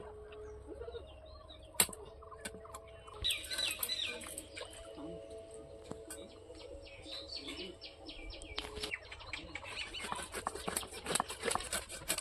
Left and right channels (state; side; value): identical; both; correlation 1.00